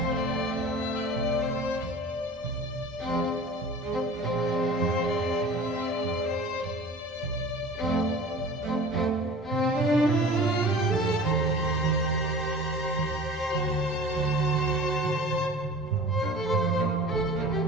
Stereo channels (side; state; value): both; normal; correlation 0.41